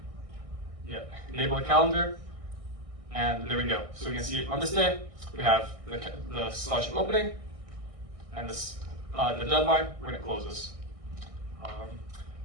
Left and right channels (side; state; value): left; late; 1.6 ms